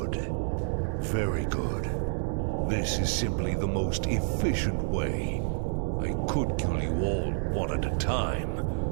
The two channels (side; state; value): left; silent; 59 dB below the other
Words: Very good. This is simply the most efficient way. I could kill you all one at a time,